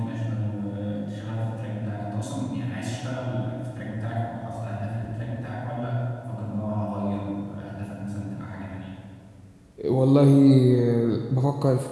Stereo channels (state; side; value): identical; both; correlation 1.00